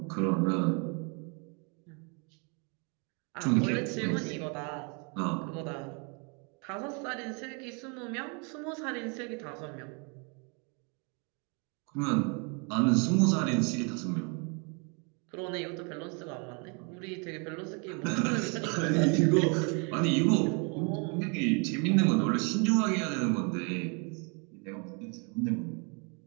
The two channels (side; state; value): left; quieter; 34.6 dB